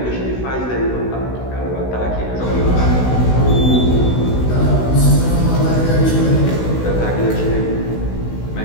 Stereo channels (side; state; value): right; late; 16 ms